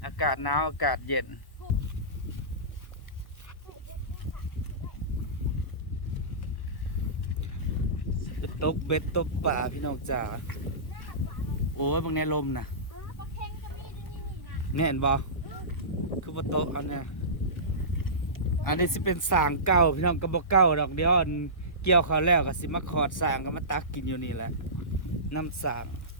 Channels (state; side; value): late; right; 1.1 ms